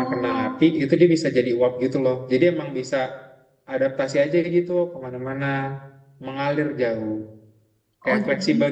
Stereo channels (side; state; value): both; identical; correlation 1.00